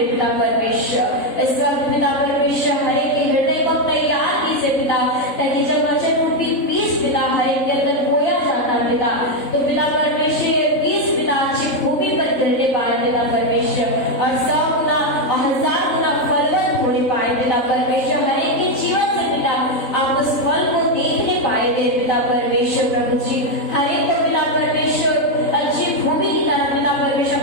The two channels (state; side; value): late; right; 3.7 ms